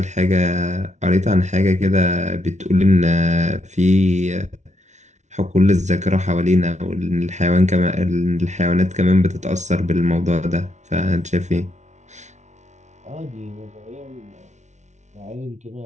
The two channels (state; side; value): late; left; 0.33 ms